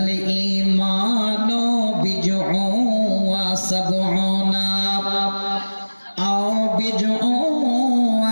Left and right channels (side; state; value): both; inverted; correlation -1.00